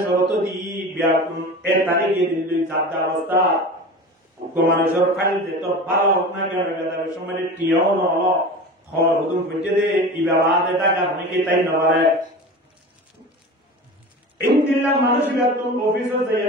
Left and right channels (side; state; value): both; normal; correlation 0.33